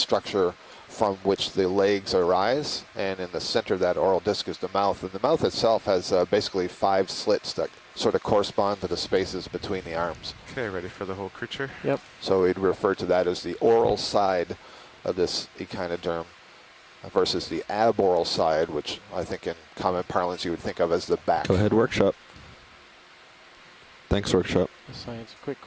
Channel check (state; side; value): identical; both; correlation 1.00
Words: from which the legs arise, and in the center of that oral disc is the mouth. And the mouth itself has basically 5 slits that sort of correspond to the spaces between the arms. Okay, ready for the whole creature? Yep. So we'd refer to that as the oral side of this echinoderm versus the aboral side, which I think in common parlance you would think of as the back. Go ahead, workshop. Thanks, workshop. Science, quick